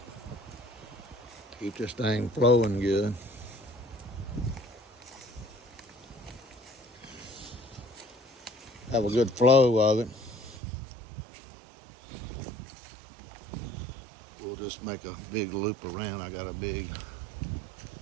Keep this thing flowing good. Have a good flow of it. We'll just make a big loop around. I got a big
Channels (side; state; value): left; drops out; at 10.6 s